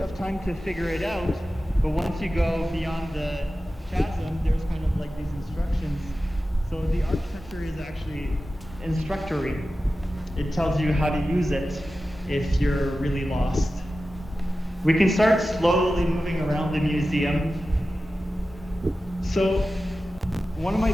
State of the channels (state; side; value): normal; both; correlation 0.94